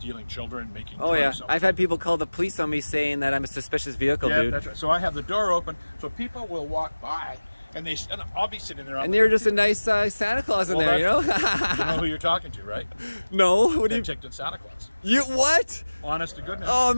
children, making drugs? Yeah. I've had people call the police on me saying that I'm a suspicious vehicle, dude. Yeah, that's right. So I have the door open, so people will walk by. And I'll be sitting there. And you're just a nice Santa Claus in there, you know? You know who you're talking to, right? No. What do you? Penticton Santa Claus. You what? Honest to goodness. Oh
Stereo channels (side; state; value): both; inverted; correlation -1.00